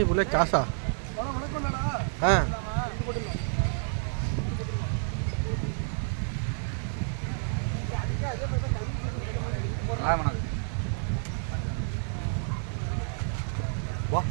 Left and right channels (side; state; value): left; silent; 58 dB below the other